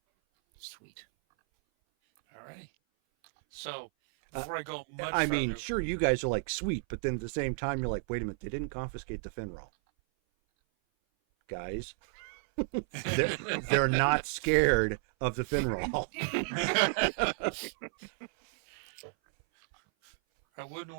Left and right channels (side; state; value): left; silent; 56 dB below the other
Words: Sweet. All right. So, before I go much I mean, further, sure, you guys are like, sweet, but then at the same time, you're like, wait a minute, they didn't confiscate the Finroll. Guys, they're not scared of the Finroll. I wouldn't